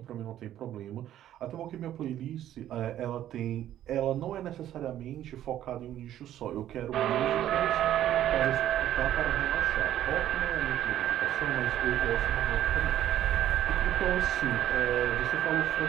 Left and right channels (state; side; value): quieter; left; 12.0 dB